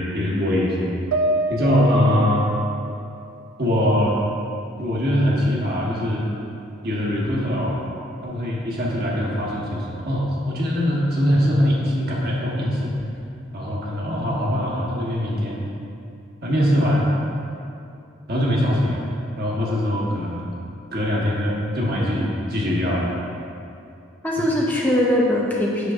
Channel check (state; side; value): normal; both; correlation 0.68